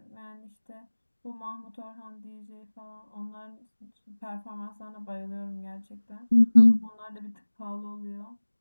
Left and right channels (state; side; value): inverted; both; correlation -1.00